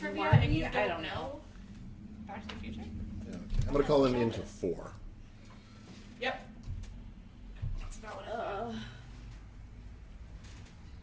Marty, and you I don't know. Back to the Future? Yeah, okay. I'm gonna call him into 4. Yep. That's about what I thought.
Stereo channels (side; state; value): both; identical; correlation 1.00